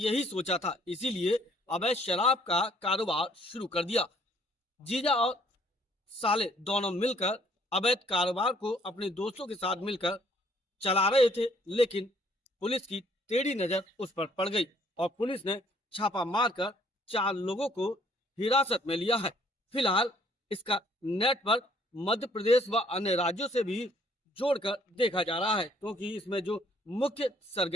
सोचा था, इसीलिए अवैध शराब का कारोबार शुरू कर दिया। जीजा और साले दोनों मिलकर अवैध कारोबार को अपने दोस्तों के साथ मिलकर चला रहे थे, लेकिन पुलिस की टेढ़ी नजर उस पर पड़ गई और पुलिस ने छापा मारकर 4 लोगों को हिरासत में लिया है। फिलहाल इसका नेटवर्क मध्य प्रदेश व अन्य राज्यों से भी जोड़कर देखा जा रहा है, क्योंकि इसमें जो मुख्य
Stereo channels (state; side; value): normal; both; correlation 0.62